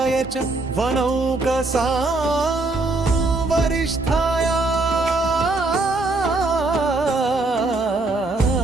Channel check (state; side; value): quieter; left; 3.2 dB